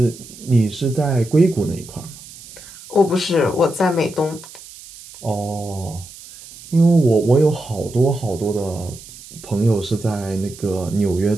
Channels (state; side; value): noise; right; hiss, 18 dB below the sound